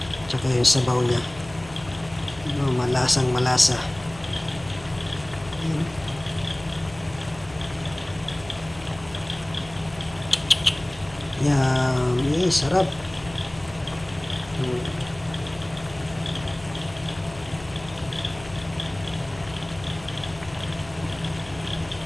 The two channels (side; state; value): left; noise; hum, 19 dB below the sound